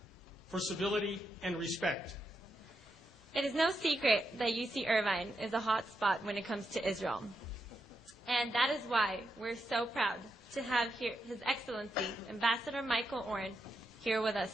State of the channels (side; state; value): both; normal; correlation 0.84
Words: for civility and respect. It is no secret that UC Irvine is a hot spot when it comes to Israel. And that is why we're so proud to have here His Excellency, Ambassador Michael Oren, here with